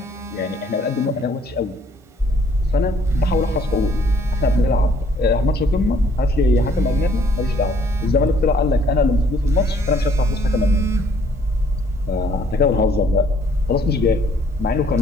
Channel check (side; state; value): both; normal; correlation 0.63